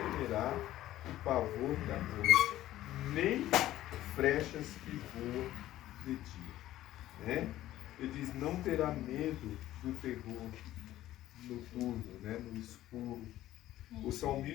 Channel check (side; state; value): right; quieter; 14.3 dB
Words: o pavor da noite, nem flechas que voam de né? Ele diz, não terá medo do terror noturno, né? No escuro. O